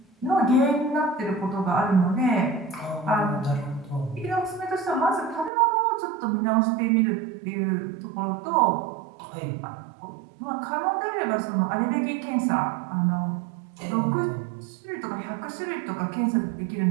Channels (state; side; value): drops out; left; at 5.5 s